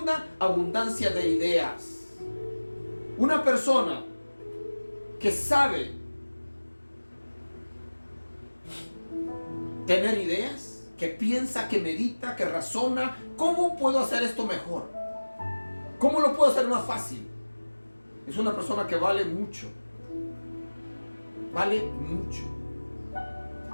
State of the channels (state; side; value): inverted; both; correlation -1.00